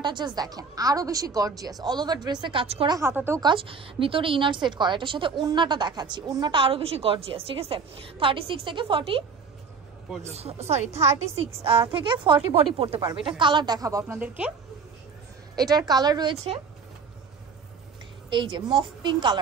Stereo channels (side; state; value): left; quieter; 5.4 dB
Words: জাস্ট দেখেন, আরো বেশি গর্জিয়াস, অল ওভার ড্রেসে কাজ করা, হাতাতেও কাজ, ভিতরে ইনার সেট করা। এটার সাথে ওড়নাটা দেখাচ্ছি, ওড়নাটা আরো বেশি গর্জিয়াস, ঠিক আছে? 36 থেকে 40, সরি 36 থেকে 40 বডি পড়তে পারবে। এটা কালার দেখাবো আপনাদেরকে। এটার কালার রয়েছে এই যে মফ পিঙ্ক